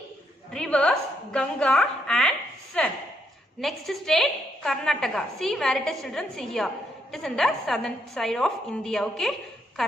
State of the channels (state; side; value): normal; both; correlation 0.76